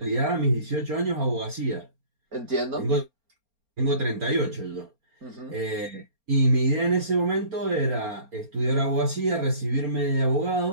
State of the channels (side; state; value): left; late; 4.3 ms